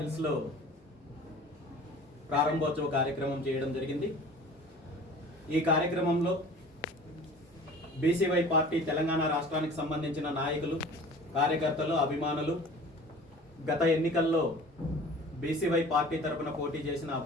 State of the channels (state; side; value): normal; both; correlation 0.43